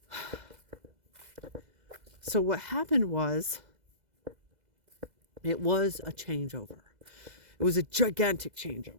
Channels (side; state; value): left; late; 2.0 ms